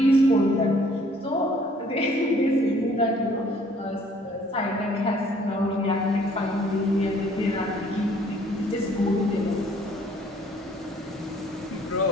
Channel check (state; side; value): normal; both; correlation 0.59